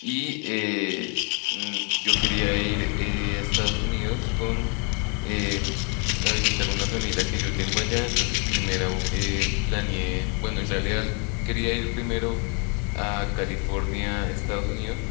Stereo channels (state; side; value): quieter; right; 34.8 dB